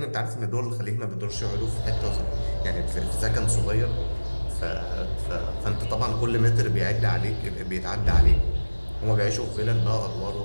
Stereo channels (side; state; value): both; inverted; correlation -1.00